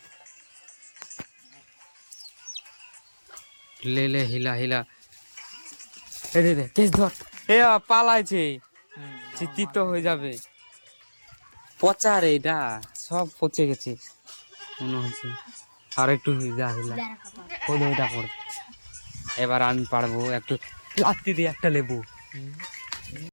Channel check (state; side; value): inverted; both; correlation -1.00